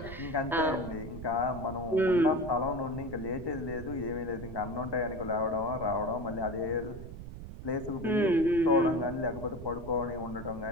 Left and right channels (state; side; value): noise; right; rumble, 11 dB below the sound